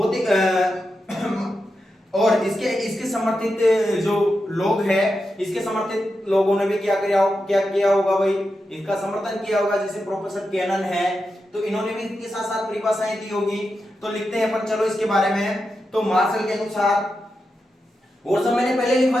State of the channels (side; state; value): both; normal; correlation 0.88